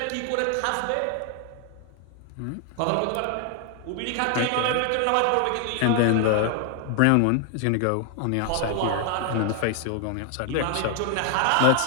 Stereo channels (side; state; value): both; different; correlation 0.00